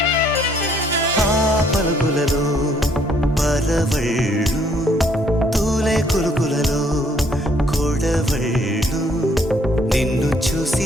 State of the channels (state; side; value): normal; both; correlation 0.65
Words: పలుకులలో పరవళ్ళు తూలే కులుకులలో కొడవళ్ళు నిన్ను